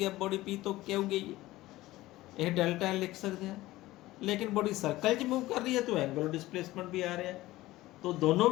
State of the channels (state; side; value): quieter; right; 17.4 dB